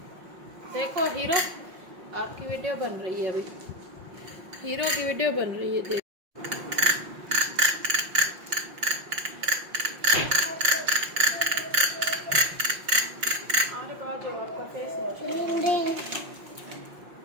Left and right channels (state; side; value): late; left; 5.6 ms